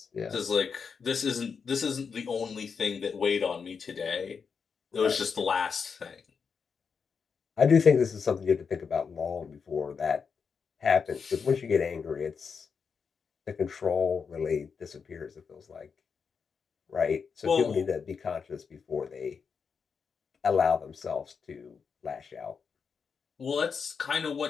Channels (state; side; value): quieter; right; 5.9 dB